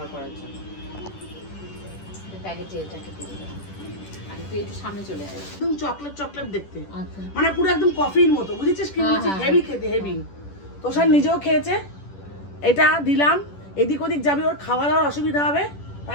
করার জন্য। প্যাকেটে এটাকে দিয়ে দেবো, আর তুই একটু সামনে চলে আসবে। একদম চকলেট দেখতে, আচ্ছা মানে পুরো একদম কফির মতো, বুঝেছিস কি বলছি, হেভি খেতে, হেভি। তো স্যার নিজেও খেয়েছে, এটা দিলাম, এদিক ওদিক যাবি, ওর খাওয়া দাওয়ার অসুবিধা হবে,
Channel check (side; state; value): right; late; 10 ms